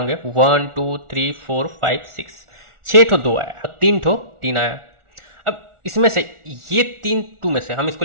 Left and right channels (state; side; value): late; left; 1.4 ms